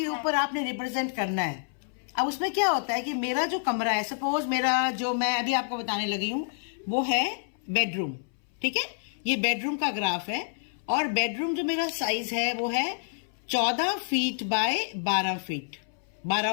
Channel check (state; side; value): silent; right; 59 dB below the other